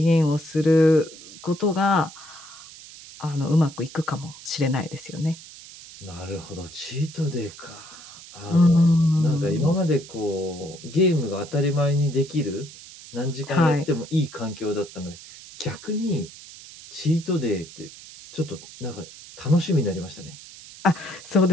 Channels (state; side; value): noise; right; hiss, 17 dB below the sound